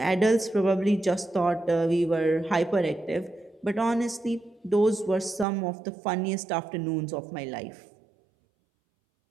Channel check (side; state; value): left; drops out; at 5.5 s